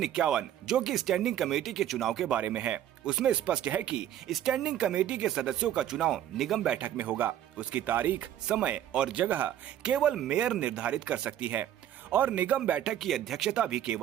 51, जो कि स्टैंडिंग कमेटी के चुनाव के बारे में है, उसमें स्पष्ट है कि स्टैंडिंग कमेटी के सदस्यों का चुनाव निगम बैठक में होगा। उसकी तारीख, समय और जगह केवल मेयर निर्धारित कर सकती है और निगम बैठक की अध्यक्षता भी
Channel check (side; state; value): left; quieter; 11.3 dB